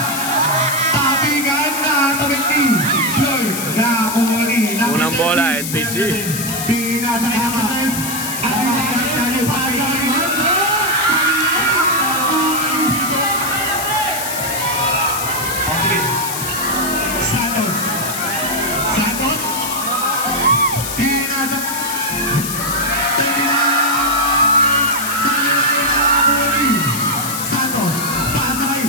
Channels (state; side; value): noise; left; hiss, 5 dB below the sound